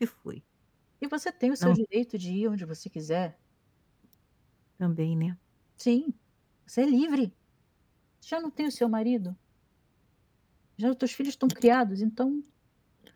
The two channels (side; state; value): both; identical; correlation 1.00